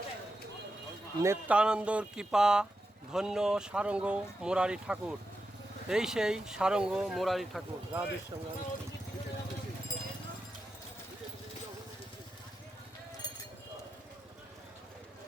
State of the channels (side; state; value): both; normal; correlation 0.88